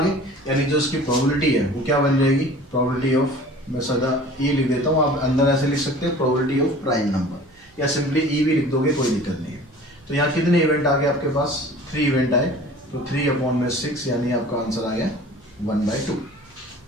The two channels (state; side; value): noise; right; hum, 30 dB below the sound